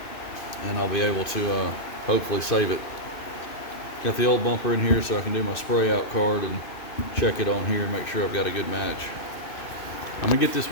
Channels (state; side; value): late; right; 2.6 ms